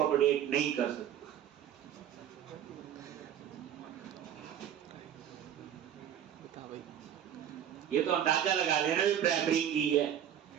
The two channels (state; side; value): quieter; left; 10.0 dB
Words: नहीं कर सकते? ये तो अंदाजा लगा लेना भी प्राइमरी की है।